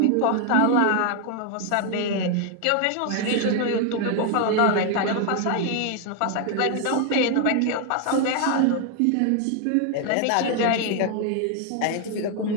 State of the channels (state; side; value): different; both; correlation 0.00